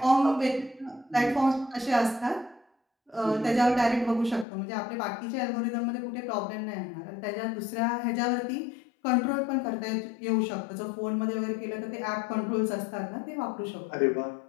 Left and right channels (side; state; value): right; drops out; at 4.5 s